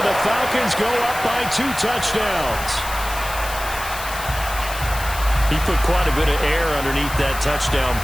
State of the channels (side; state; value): left; noise; hiss, 11 dB below the sound